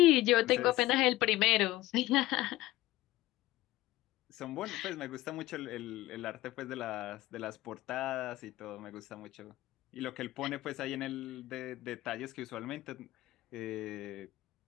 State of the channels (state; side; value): quieter; right; 16.8 dB